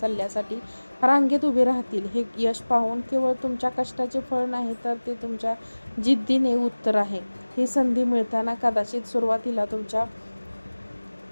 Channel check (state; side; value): inverted; both; correlation -1.00